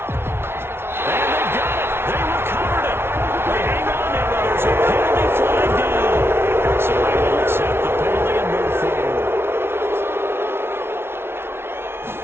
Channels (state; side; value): late; left; 0.12 ms